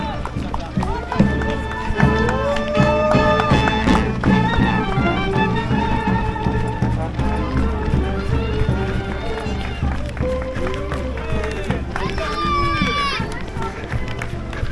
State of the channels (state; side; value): identical; both; correlation 1.00